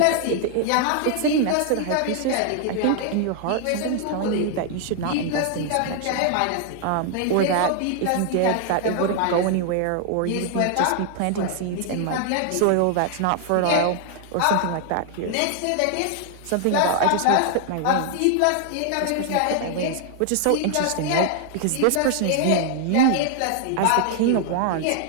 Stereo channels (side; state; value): both; different; correlation 0.00